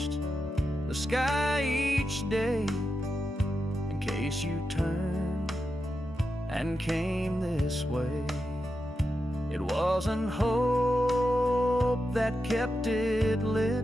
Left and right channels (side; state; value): both; normal; correlation 0.88